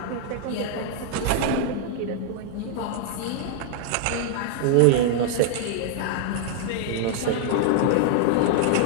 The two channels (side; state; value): both; different; correlation -0.01